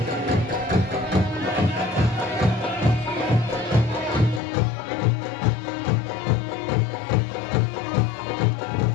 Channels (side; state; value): right; drops out; at 4.4 s